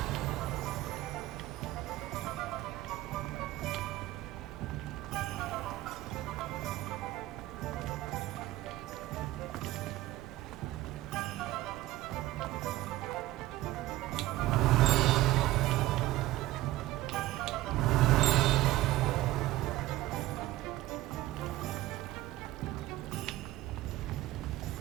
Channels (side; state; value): left; quieter; 16.2 dB